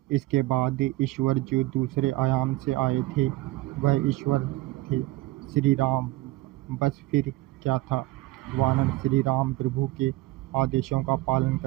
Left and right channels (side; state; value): left; quieter; 18.6 dB